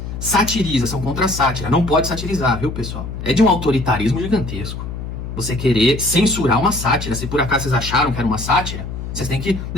Satiriza, são contra a sátira. Não pode satirizar, viu, pessoal? É de um autoritarismo gigantesco. Você querer censurar uma sátira. Se por acaso vocês acharam que era uma sátira, vocês têm que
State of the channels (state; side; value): noise; left; hum, 7 dB below the sound